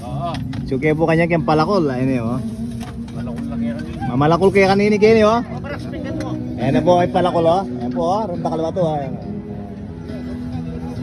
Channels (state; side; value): identical; both; correlation 1.00